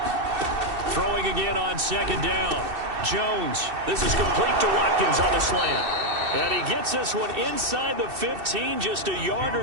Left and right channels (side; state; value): left; late; 2.7 ms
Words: Throwing again on 2nd down. Jones, this is complete to Watkins on the slant. And he gets this one inside the 15, just a yard